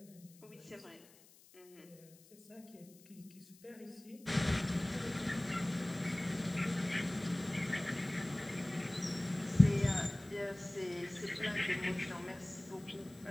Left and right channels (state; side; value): noise; left; hiss, 25 dB below the sound